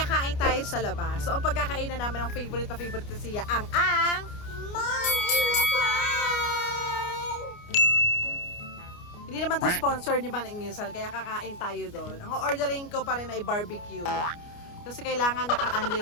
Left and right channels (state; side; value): late; right; 29 ms